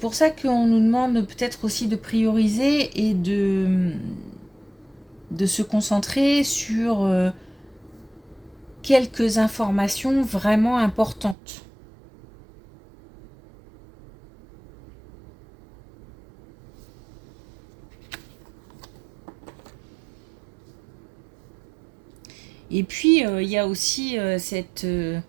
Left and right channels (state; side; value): drops out; left; at 11.4 s